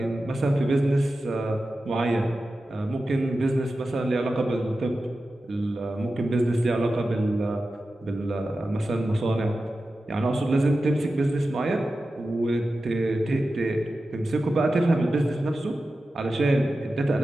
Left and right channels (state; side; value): normal; both; correlation 0.93